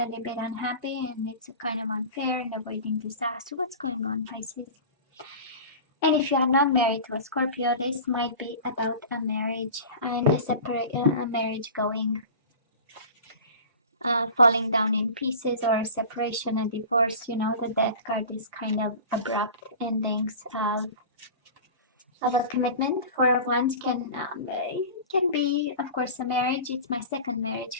little bit unhappy and it's kind of unfair and avoiding disaster. What's going on, Pisces? And if you are not married to a Scorpio, this might be about a marriage and a marriage going falling down in pieces, or a separation, a divorce. You know, the Death card is kind of abrupt endings of a commitment. Four of Wands can be, of course, a marriage. It's my second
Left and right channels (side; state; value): both; inverted; correlation -0.35